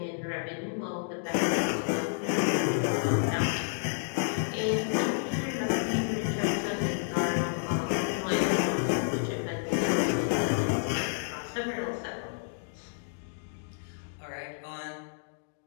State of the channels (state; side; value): silent; right; digital silence